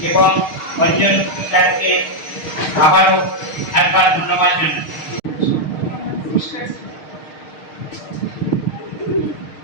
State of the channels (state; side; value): late; right; 6.5 ms